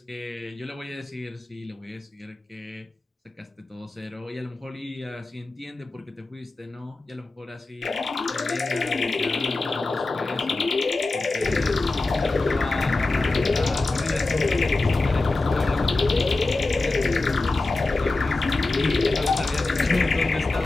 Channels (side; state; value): right; quieter; 3.2 dB